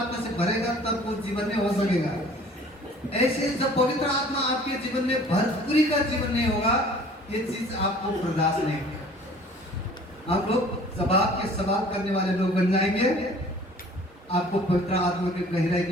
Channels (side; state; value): both; normal; correlation 0.50